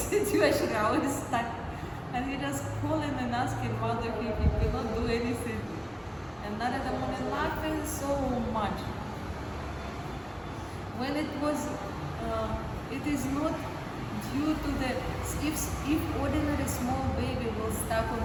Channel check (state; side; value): identical; both; correlation 1.00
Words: How he's stuck. And he just calling and asking Mother if he cannot do anything. And Narada Muni laughing so much. When it was, it is not due to the, if ordinary small baby will stuck